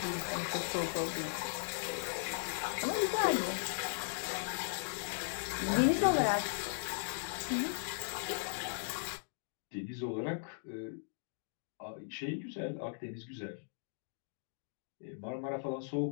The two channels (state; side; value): silent; right; digital silence